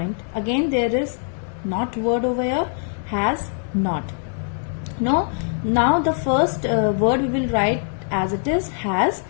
Again there is not word over here, has not. No, now the first word we will write as it is has,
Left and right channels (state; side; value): silent; right; 58 dB below the other